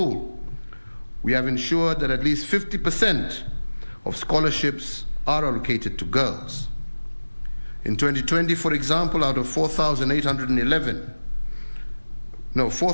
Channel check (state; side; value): inverted; both; correlation -1.00